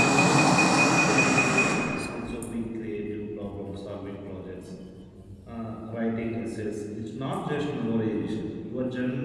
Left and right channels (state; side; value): identical; both; correlation 1.00